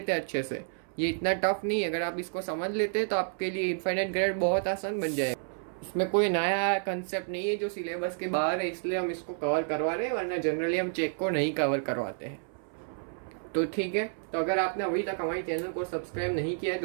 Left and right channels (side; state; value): left; silent; 58 dB below the other